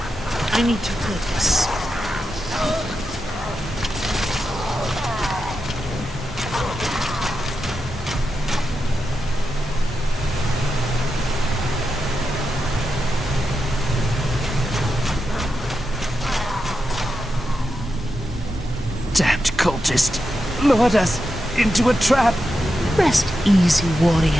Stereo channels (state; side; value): normal; both; correlation 0.88